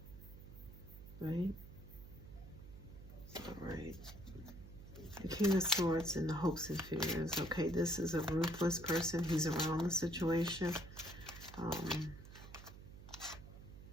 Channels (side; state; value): right; noise; hum, 15 dB below the sound